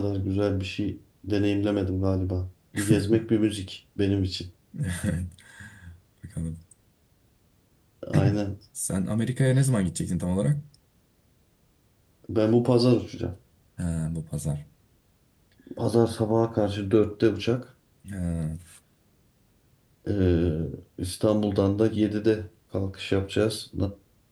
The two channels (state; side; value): identical; both; correlation 1.00